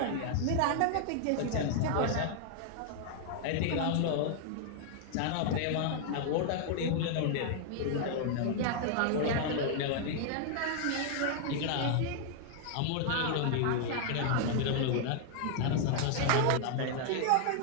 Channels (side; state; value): both; different; correlation 0.00